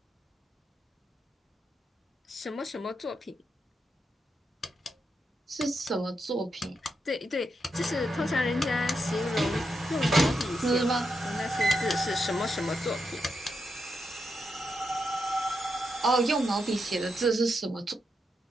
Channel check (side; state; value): both; normal; correlation 0.84